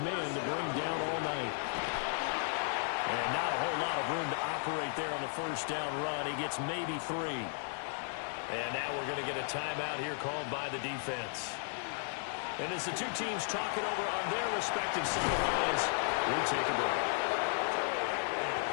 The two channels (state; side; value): silent; right; 55 dB below the other